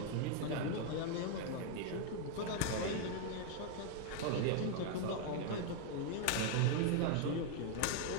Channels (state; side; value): different; both; correlation 0.00